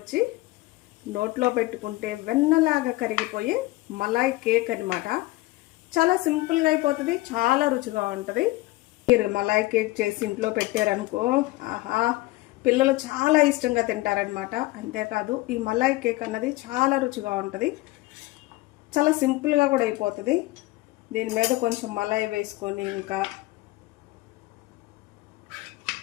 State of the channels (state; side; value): quieter; right; 19.7 dB